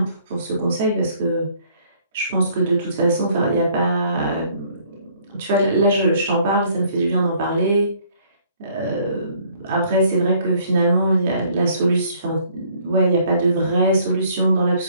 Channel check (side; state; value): both; inverted; correlation -0.62